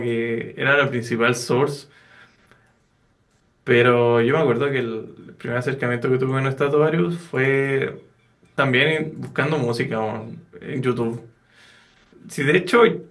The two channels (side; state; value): both; identical; correlation 1.00